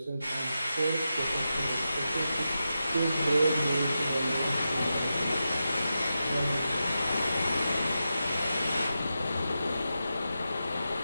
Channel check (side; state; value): both; inverted; correlation -0.90